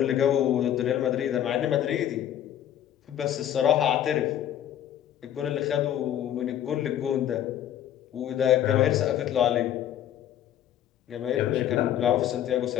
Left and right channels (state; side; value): quieter; right; 10.9 dB